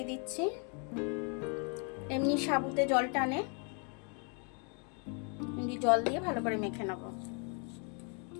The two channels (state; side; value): quieter; right; 37.7 dB